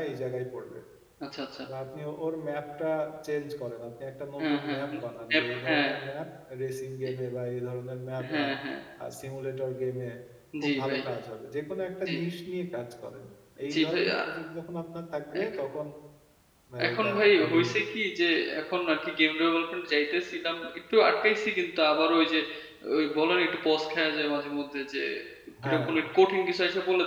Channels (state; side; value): identical; both; correlation 1.00